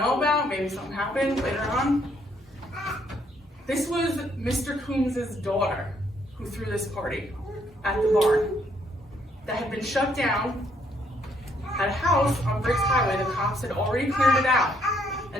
about? Maybe something happened later on? This was Mr. Coombs' daughter who threw this party at the barn that had been shut down at a house on Briggs Highway. The cops had already cleared it out.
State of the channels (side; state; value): both; normal; correlation 0.70